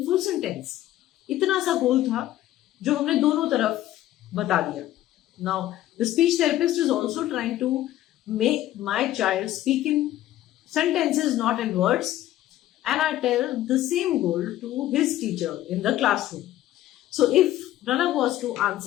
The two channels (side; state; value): right; quieter; 14.0 dB